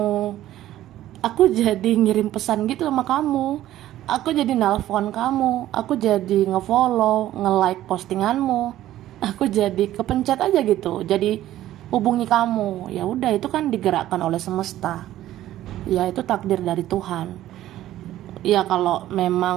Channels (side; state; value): left; quieter; 13.7 dB